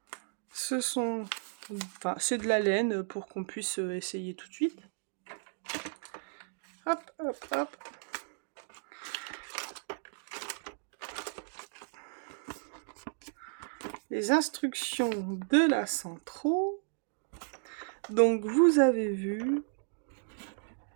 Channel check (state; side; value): silent; left; digital silence